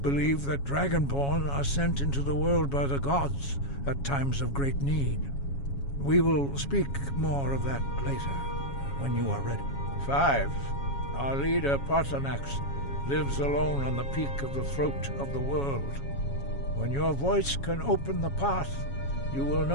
believe that Dragonborn are sent into the world by the gods at times of great need. We will speak more of that later, when you are ready. 5. Our leader, Paarthurnax, lives alone on the peak of the throat of the world. When your voice can open the path, you will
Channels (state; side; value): late; right; 7.2 ms